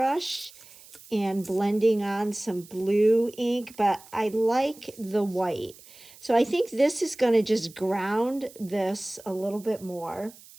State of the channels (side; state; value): right; noise; hiss, 22 dB below the sound